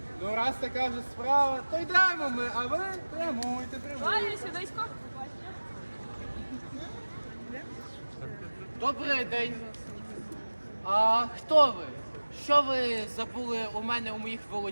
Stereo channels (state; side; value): inverted; both; correlation -1.00